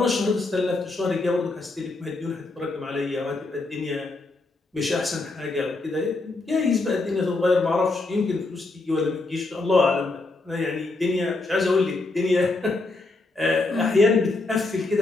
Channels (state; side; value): quieter; right; 3.3 dB